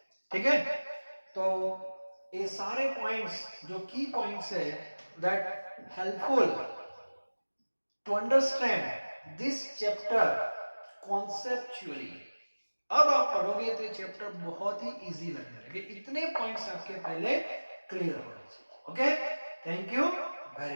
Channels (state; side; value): inverted; both; correlation -1.00